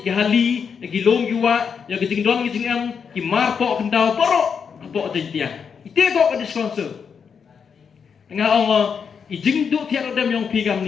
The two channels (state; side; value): quieter; right; 6.5 dB